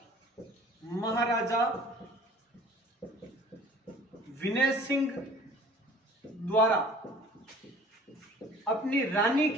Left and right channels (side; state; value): both; normal; correlation 0.49